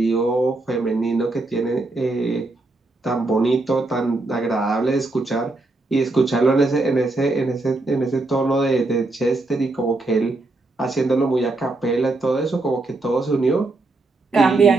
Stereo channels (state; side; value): quieter; left; 3.1 dB